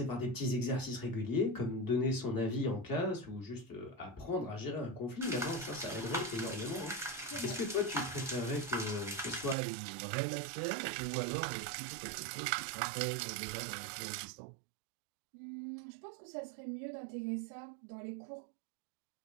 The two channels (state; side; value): drops out; left; at 9.6 s